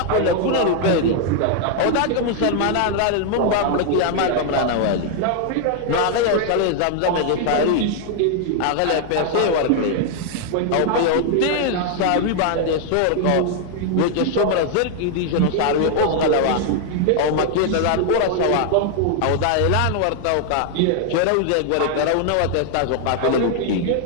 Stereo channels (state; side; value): different; both; correlation 0.00